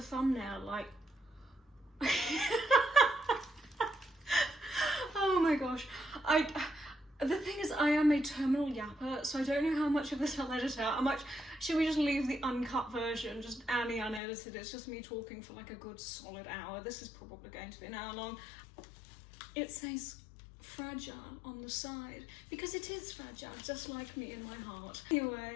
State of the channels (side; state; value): right; drops out; at 14.2 s